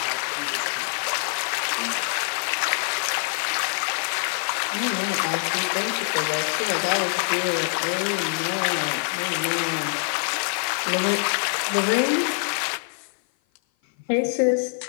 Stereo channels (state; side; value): silent; right; 55 dB below the other